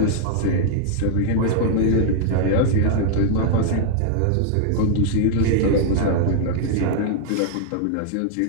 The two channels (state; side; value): different; both; correlation 0.00